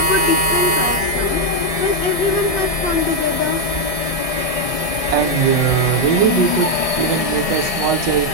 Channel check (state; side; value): late; right; 1.6 ms